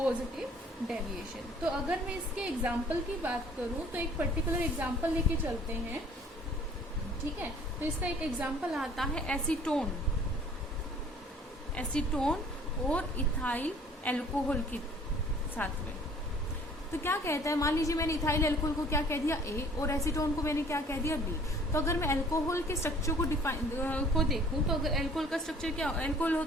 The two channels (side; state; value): both; normal; correlation 0.53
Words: डेविएशन। तो अगर मैं इसके एग्जाम्पल की बात करूं तो एक पर्टिकुलर एग्जाम्पल लेके चलते हैं, ठीक है। तो इसका एक एग्जाम्पल आता है एसीटोन और इथाइल एल्कोहल के साथ में। तो क्या कहता है, मान लीजिए मैंने इथाइल एल्कोहल को क्या कह दिया A और एसीटोन को मैंने क्या कह दिया B। तो अगर मैं अल्कोहल के स्ट्रक्चर को देखूं तो अगर अल्कोहल का स्ट्रक्चर क्या, अल्कोहल